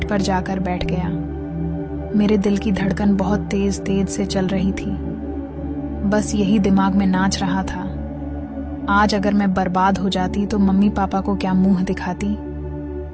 पर जाकर बैठ गया। मेरे दिल की धड़कन बहुत तेज तेज से चल रही थी। बस यही दिमाग में नाच रहा था, आज अगर मैं बर्बाद हो जाती तो मम्मी पापा को क्या मुंह दिखाती।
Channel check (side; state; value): both; identical; correlation 1.00